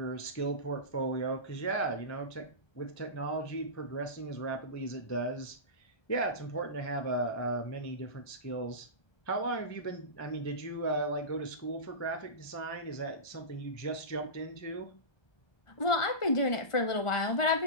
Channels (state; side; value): late; right; 1.4 ms